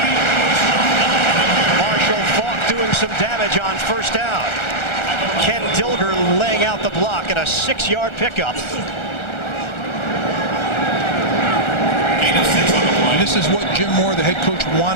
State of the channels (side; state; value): right; late; 1.4 ms